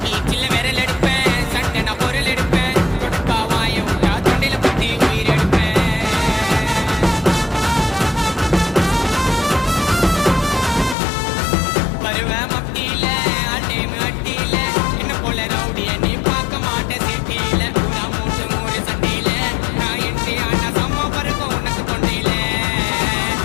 சில்ல விரல் எடுப்பேன் சண்டை நான் பொருள் எடுப்பேன் கொடுப்பா வாய விட்டா தொண்டையில பத்தி உயிர் எடுப்பேன் வருவேன் மத்தியில அட்டேமு அட்டியில என்ன போல ரவுடிய நீ பார்க்க மாட்ட சிட்டியில ஊரா மூட்டு மூறு சண்டையில நான் என்ட்ரி ஆனா சம்மா பறக்கும் உனக்கு தொண்டையில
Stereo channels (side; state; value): right; drops out; at 11.0 s